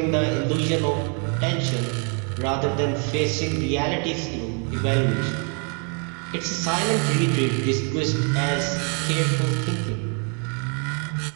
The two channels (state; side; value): quieter; left; 38.7 dB